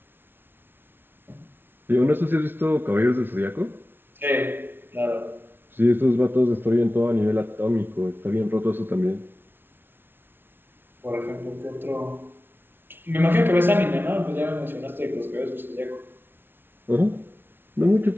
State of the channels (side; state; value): left; late; 0.11 ms